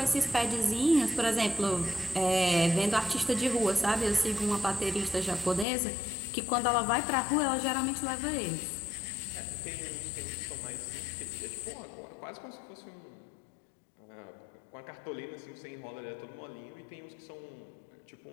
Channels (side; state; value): right; drops out; at 5.7 s